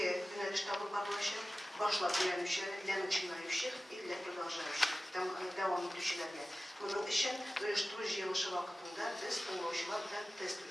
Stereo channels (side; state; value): both; normal; correlation 0.96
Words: yöneliş tabı bağlaşır. Başlap öğrenmişler, ilan içinlaymışlar, ille продолжающих, devam etmişlerle. Bunun için uyuşturucu yılışı vaktinde biz tonlaşılar bilen test